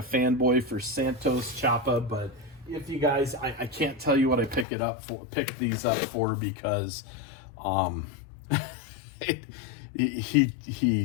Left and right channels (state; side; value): drops out; right; at 4.7 s